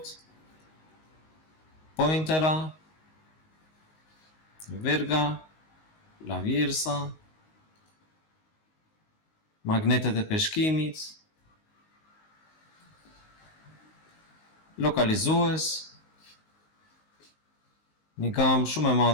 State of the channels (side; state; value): right; late; 19 ms